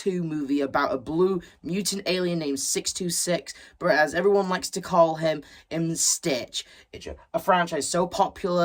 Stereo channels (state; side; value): identical; both; correlation 1.00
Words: movie about a blue mutant alien named 626, but as everyone likes to call him, Stitch. It's a franchise so